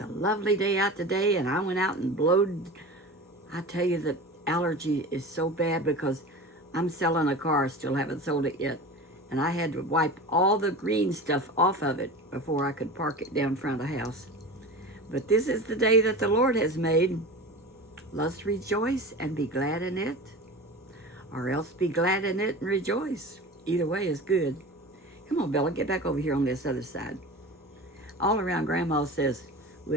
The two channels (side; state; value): both; normal; correlation 0.33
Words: a lovely day out today, and I went out and blowed. I tell you, the allergy is so bad because I'm selling a car, still haven't sold it yet. And I had to wipe all the green stuff off of it before I could park it down front of the house. But this is the day that the Lord has made. Let's rejoice and be glad in it, or else be glad in it and rejoice. Either way is good. Come on, Bella, get back over here on this other side. All around Grandma says,